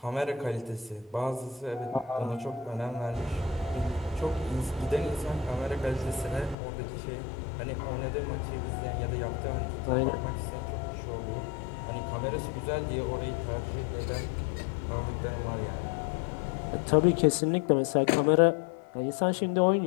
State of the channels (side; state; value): right; drops out; at 6.6 s